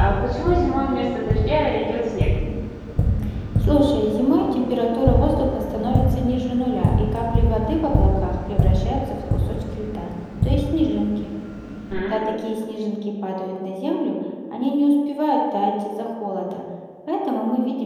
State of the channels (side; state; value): both; identical; correlation 1.00